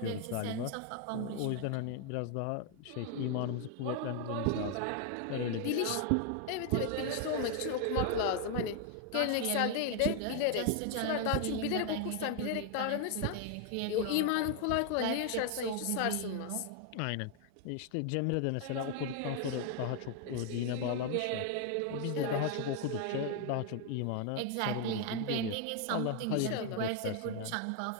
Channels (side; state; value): both; different; correlation 0.00